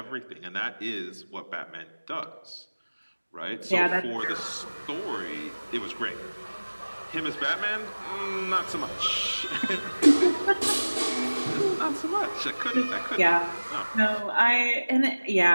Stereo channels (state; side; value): inverted; both; correlation -1.00